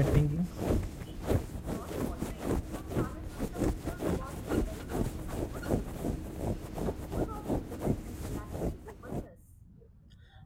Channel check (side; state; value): both; identical; correlation 1.00